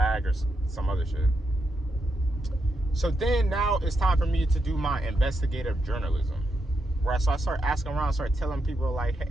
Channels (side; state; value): both; normal; correlation 0.83